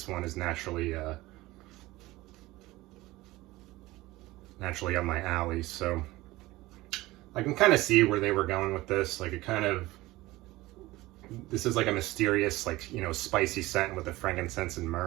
one is naturally up my alley. So I can kind of see where they were going with this. Like this is like a mysterious, like, you know, spicy scent with the frankincense and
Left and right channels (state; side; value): quieter; left; 18.9 dB